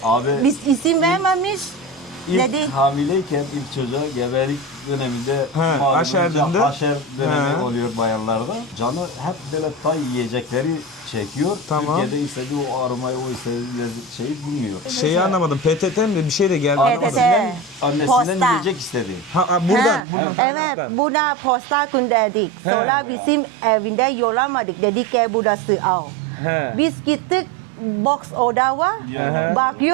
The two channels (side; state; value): left; drops out; at 20.0 s